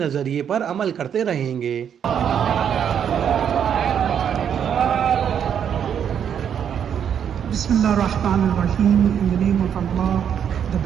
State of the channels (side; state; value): left; quieter; 8.5 dB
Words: پر عمل کرتے رہیں گے. بسم اللہ الرحمن الرحیم. In the name of Allah, the